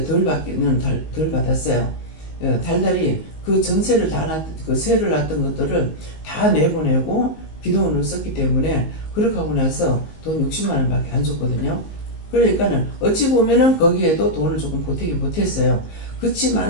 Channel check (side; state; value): right; late; 19 ms